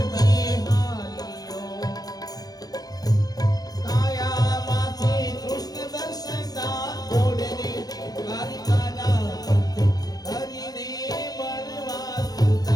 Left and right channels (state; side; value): late; right; 0.19 ms